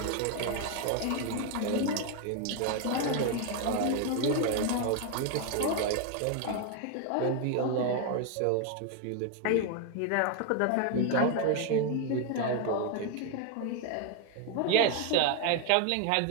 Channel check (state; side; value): different; both; correlation 0.01